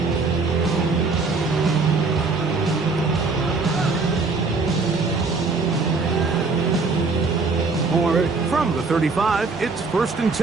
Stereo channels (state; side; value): quieter; left; 4.1 dB